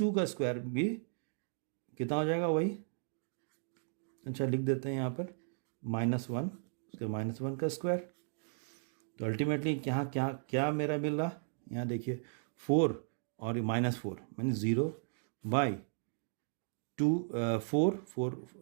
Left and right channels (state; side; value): silent; left; digital silence